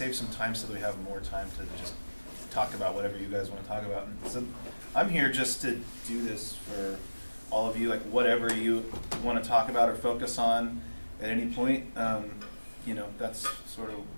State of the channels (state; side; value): inverted; both; correlation -1.00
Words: some time so that we have more time to just talk about whatever you guys want to talk about. And so I'm here just to do this for all of you, like whatever you want to talk about or focus on at any point. You know, that's sort of